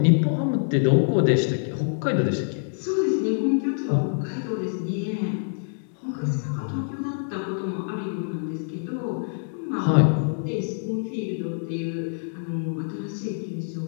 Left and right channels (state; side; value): silent; right; 61 dB below the other